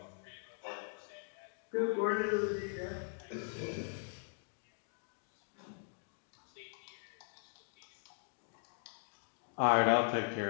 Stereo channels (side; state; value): right; silent; 51 dB below the other